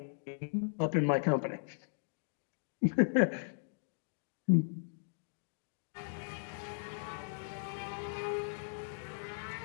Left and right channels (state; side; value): silent; right; digital silence